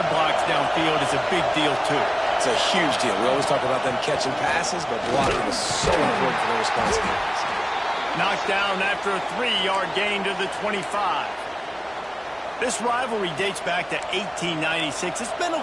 blocks downfield is a big deal, too. It's a huge deal. We always talk about them catching passes, but blocking is so important for their responsibilities. Knocked down after a 3-yard gain to the 25. This rivalry dates back to 1896. It's been a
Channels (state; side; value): identical; both; correlation 1.00